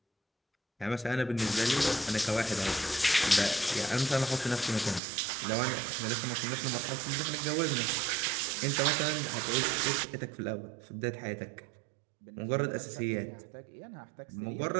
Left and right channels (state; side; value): drops out; left; at 5.0 s